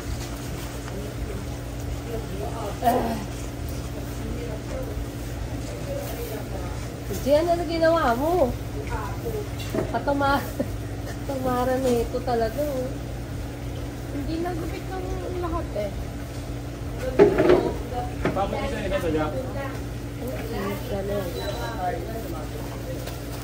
Diyan na ginawa mo. Katamaran na ito talaga. Oh. Hindi nagupit ng lahat eh. Bakit isa ina sa Jack?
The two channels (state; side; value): identical; both; correlation 1.00